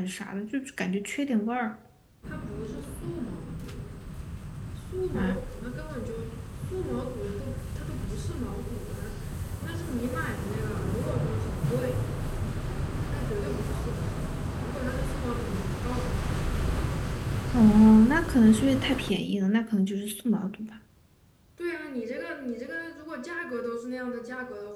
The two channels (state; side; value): identical; both; correlation 1.00